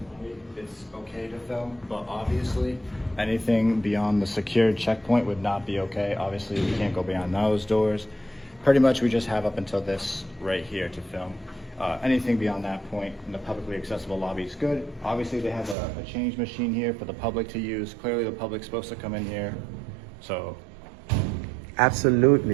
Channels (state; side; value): drops out; left; at 15.8 s